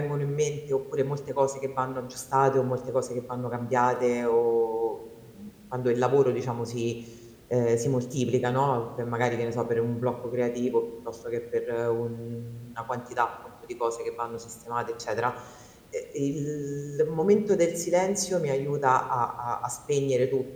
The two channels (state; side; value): identical; both; correlation 1.00